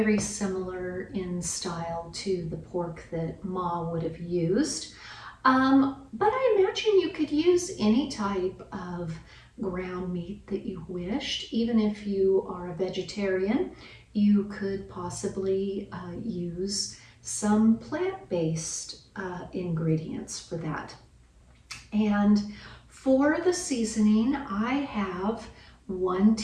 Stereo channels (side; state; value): both; identical; correlation 1.00